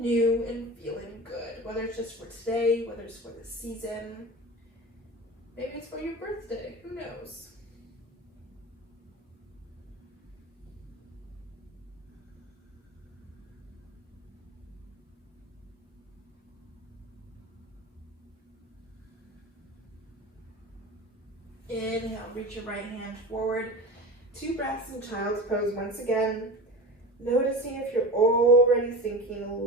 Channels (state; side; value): normal; both; correlation 0.31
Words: and feeling good. Whether it's just for today, whether it's for the season, maybe it's for your birthday, who knows? Inhale, reach your right hand forward. 2 breaths in child's pose once again. Noticing if you're already sinking a